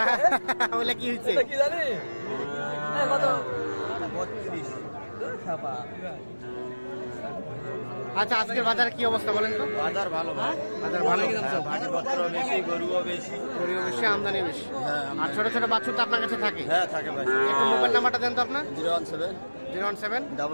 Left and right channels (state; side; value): inverted; both; correlation -1.00